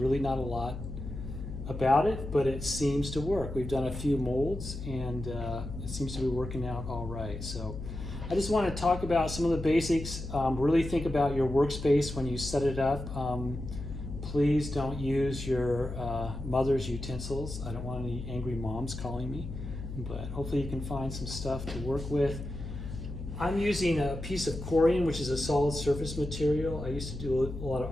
not a lot about it, but it seems to work. We've done a few molds and it seems to be working out all right. So I just want to talk about some of the basics. Really think about your workspace when you set it up. Please don't use your mother's utensils. I don't want any angry moms calling me, but hopefully you can find some stuff to work with. I'm using a piece of corian, which is a solid surface material. I used to do a lot of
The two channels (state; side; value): noise; left; hum, 8 dB below the sound